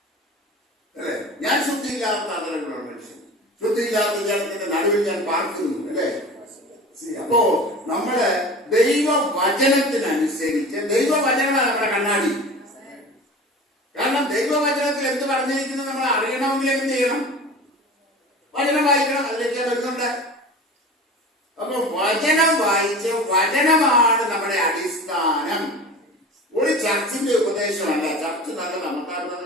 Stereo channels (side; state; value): both; normal; correlation 0.36